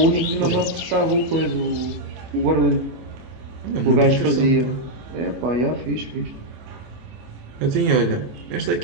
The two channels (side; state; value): left; late; 25 ms